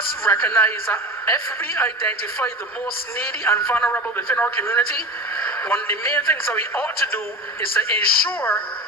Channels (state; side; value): normal; both; correlation 0.31